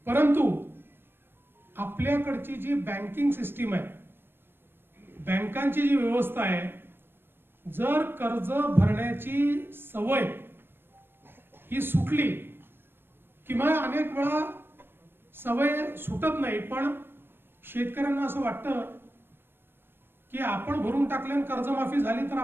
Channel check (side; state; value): left; late; 0.10 ms